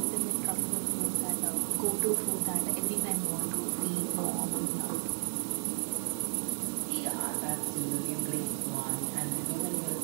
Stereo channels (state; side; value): silent; left; 56 dB below the other